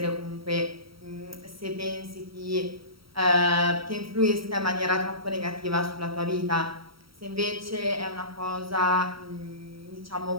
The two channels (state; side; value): late; left; 0.75 ms